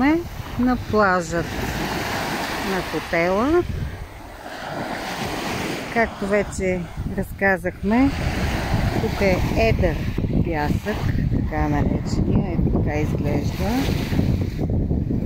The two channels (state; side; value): identical; both; correlation 1.00